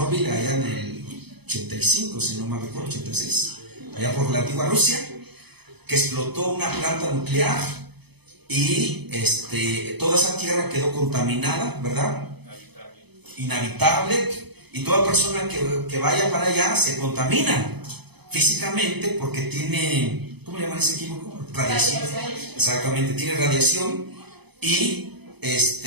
allá en el 85, si no me recuerdo, 86, allá por la antigua Rusia? Que explotó una planta nuclear y toda esa tierra quedó contaminada, ¿verdad? Inhabitable. Y toda persona que vaya para allá se contamina físicamente porque tiene, ¿cómo le llaman ese químico? Radiación. Exactamente, tiene radiación y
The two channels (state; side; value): late; left; 0.98 ms